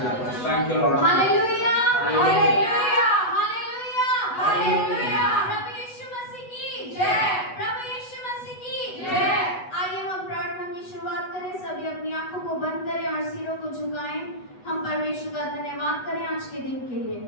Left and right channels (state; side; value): late; right; 8.1 ms